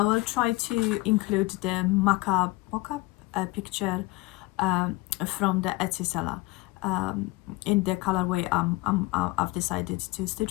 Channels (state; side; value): quieter; right; 21.2 dB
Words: will try to include the mock-up picture from the Etsy seller in the colorway I've decided to stitch